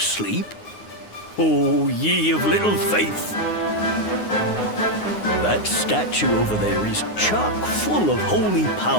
Oh, ye of little faith! That statue over there is chock full of holy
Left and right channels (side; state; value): right; late; 9.6 ms